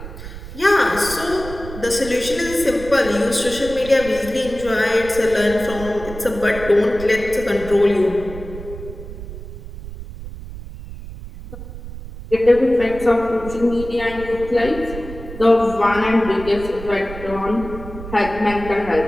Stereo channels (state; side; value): noise; right; rumble, 12 dB below the sound